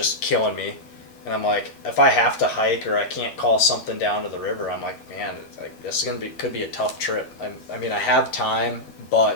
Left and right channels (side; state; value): right; late; 12 ms